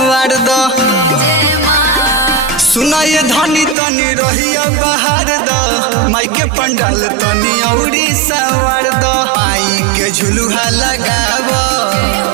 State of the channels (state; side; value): drops out; left; at 3.8 s